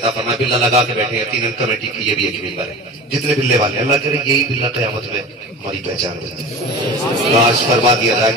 فرمائے. بلّا لگا کے بیٹھے ہیں 3 کمیٹی کی، یہ بھی ایک ممبر ہے. جتنے بلے والے اللہ کرے یہی بلّا قیامت میں ہماری پہچان ہو جائے. کاش فرما دیا جائے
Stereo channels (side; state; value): both; normal; correlation 0.33